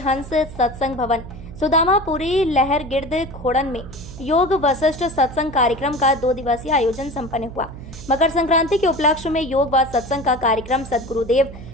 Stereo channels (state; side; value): noise; right; hum, 14 dB below the sound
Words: सत्संग भवन सुदामापुरी लहर गिर्द खोड़न में योग वशिष्ठ सत्संग कार्यक्रम का 2 दिवसीय आयोजन संपन्न हुआ। मकर संक्रांति के उपलक्ष्य में योग व सत्संग का कार्यक्रम सदगुरुदेव